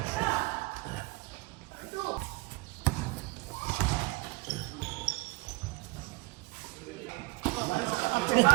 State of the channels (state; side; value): quieter; left; 24.1 dB